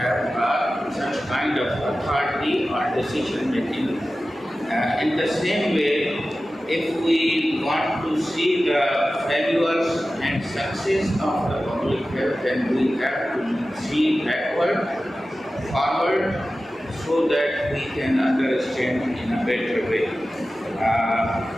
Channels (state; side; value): normal; both; correlation 0.95